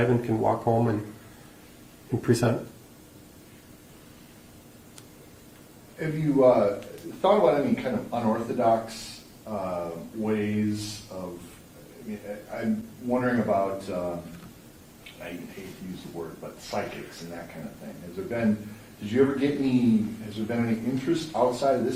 and can walk home and present. Have you thought about any kind of unorthodox ways of, I mean, I'm wondering about, I hate to use the word, but psychics and that kind of thing. Has there been any interest outside of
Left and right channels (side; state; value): both; identical; correlation 1.00